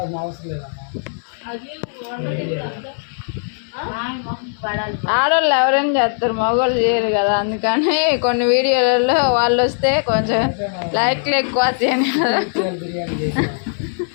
అవసరం లేదమ్మా ఆడవాళ్ళు ఎవరైనా చేస్తారు మగవాళ్ళు చేయరు కదా అందుకని కొన్ని వీడియోలలో వాళ్ళు వస్తే కొంచెం లైక్లు ఎక్కువ వస్తాయని కదా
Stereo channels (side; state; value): right; silent; 60 dB below the other